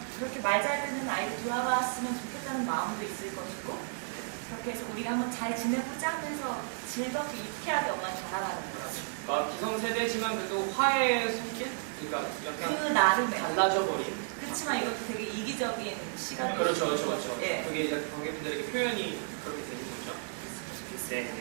그렇게 말 잘 듣는 아이를 돌아봤으면 좋겠다는 마음도 있을 것이고 그렇게 해서 우리가 한번 잘 지내보자 하면서 즐겁게 유쾌하게 엄마는 다가가는 거죠. 그러니까 기성세대지만 그래도 화해의 손길? 그러니까 약간 그 나름의. 달라져 버린. 그렇지만 이것도 되게 이기적인 시간이 그렇죠, 그렇죠, 그렇죠. 예. 그게 이제 관객분들에게 표현이 그렇게 되는 거죠. 네, 네,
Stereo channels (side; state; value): left; silent; digital silence